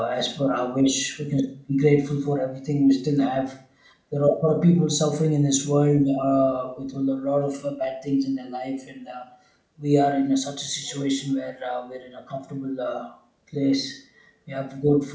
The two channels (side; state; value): both; identical; correlation 1.00